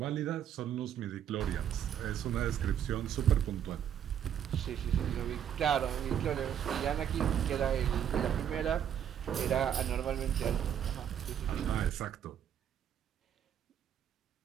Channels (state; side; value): quieter; left; 9.4 dB